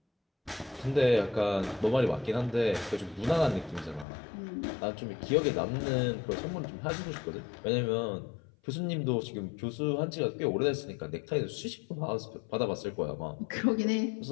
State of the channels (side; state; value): right; drops out; at 4.0 s